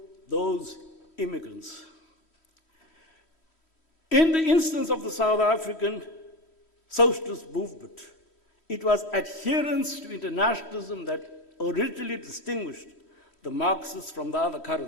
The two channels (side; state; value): right; late; 3.1 ms